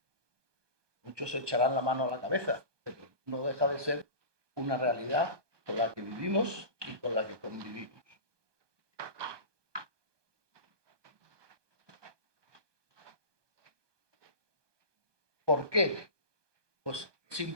Muchos se echarán la mano a la cabeza, pero no deja de ser una realidad con la que vivimos y con la que convivimos. ¿Por qué? Pues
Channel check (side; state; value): left; late; 1.2 ms